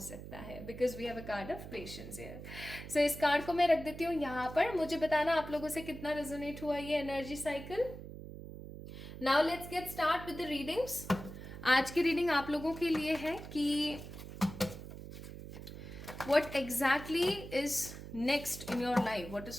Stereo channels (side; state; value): right; noise; hum, 11 dB below the sound